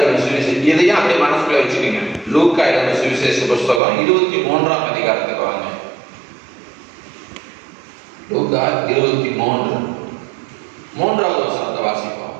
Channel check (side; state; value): left; drops out; at 3.8 s